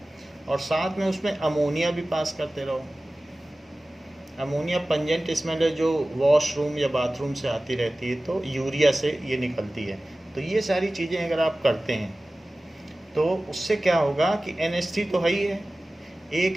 और साथ में उसमें अमोनिया भी पास करते रहो। अमोनिया पंजेंट स्मेल है जो वॉशरूम या बाथरूम से आती रहती है, तो यूरिया से ये निकलती है। तो ये सारी चीज़ें अगर आप करते हैं तो उससे क्या होगा कि NH3 तो है ही है,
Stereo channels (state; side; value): normal; both; correlation 0.97